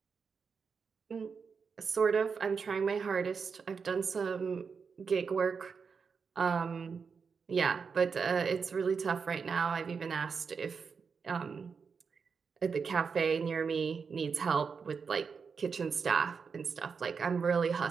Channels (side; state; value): left; quieter; 5.7 dB